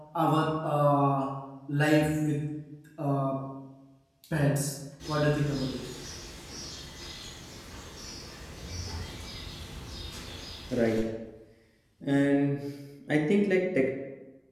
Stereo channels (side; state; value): both; identical; correlation 1.00